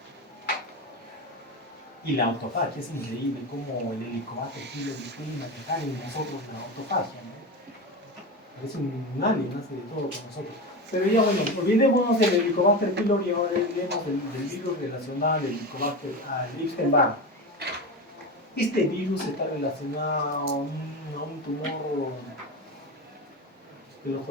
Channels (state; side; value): normal; both; correlation 0.22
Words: Y la autofagia es increíble cómo el Helicobacter pylori puede manejar en nosotros la autofagia, ¿no? Es un alien, hace de todo con nosotros. Pero ya bueno, olvidémonos del Helicobacter pylori y ahora hablemos del virus relacionado al Helicobacter, al Epstein-Barr. Este virus está relacionado a un tumor que los